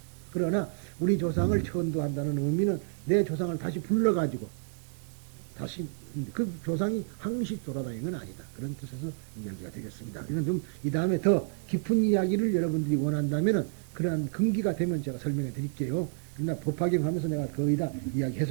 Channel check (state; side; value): silent; left; digital silence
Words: 그러나 우리 조상을 천도한다는 의미는 내 조상을 다시 불러가지고 다시 그 조상이 항시 돌아다니는 건 아니다. 그런 뜻에서 이야기가 되겠습니다. 이건 좀 이 다음에 더 깊은 이야기를 여러분들이 원한다면은 그러한 근기가 되면 제가 설명해 드릴게요. 그러나 법화경하면서 내가 거의 다